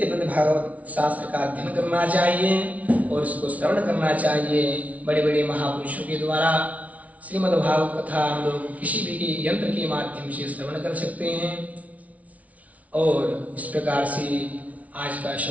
भागवत शास्त्र का अध्ययन करना चाहिए और इसको श्रवण करना चाहिए। बड़े बड़े महापुरुषों के द्वारा श्रीमद्भागवत कथा हम लोग किसी भी यंत्र के माध्यम से श्रवण कर सकते हैं। और इस प्रकार से आज का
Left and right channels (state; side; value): late; left; 0.069 ms